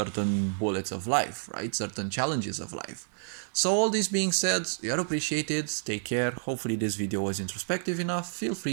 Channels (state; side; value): silent; left; digital silence